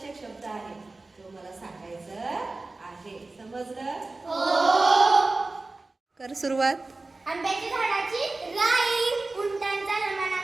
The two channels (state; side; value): quieter; left; 3.3 dB